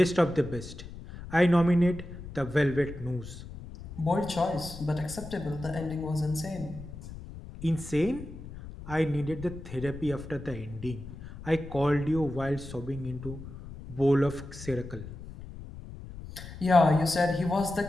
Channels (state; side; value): noise; left; rumble, 13 dB below the sound